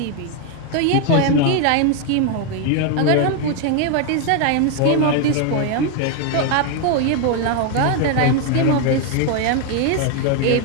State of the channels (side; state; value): both; different; correlation 0.01